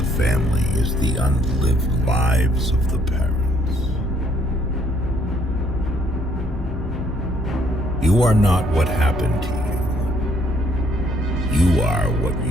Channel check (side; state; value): both; normal; correlation 0.66